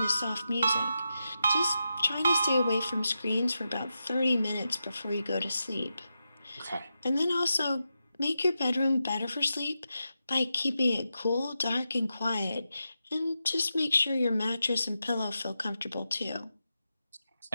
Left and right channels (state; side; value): inverted; both; correlation -0.89